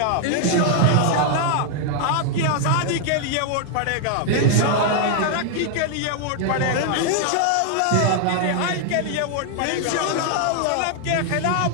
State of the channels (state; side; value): different; both; correlation 0.00